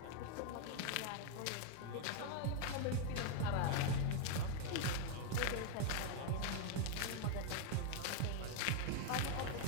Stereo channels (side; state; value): both; different; correlation 0.00